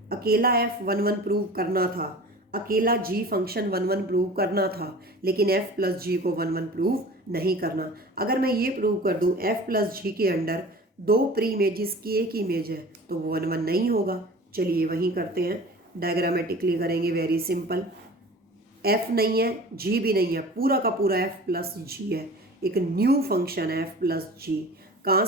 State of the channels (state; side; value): normal; both; correlation 0.40